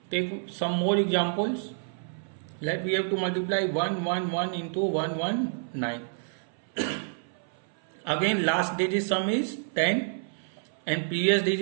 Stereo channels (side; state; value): left; silent; 59 dB below the other